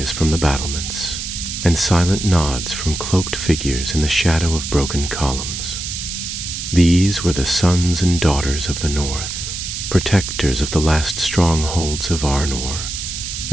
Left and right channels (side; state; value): right; noise; hiss, 6 dB below the sound